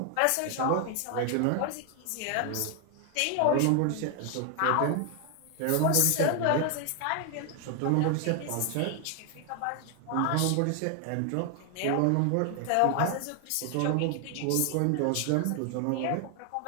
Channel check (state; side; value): different; both; correlation 0.00